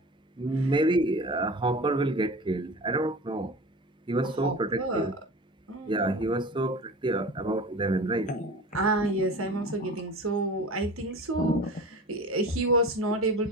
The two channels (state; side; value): normal; both; correlation 0.36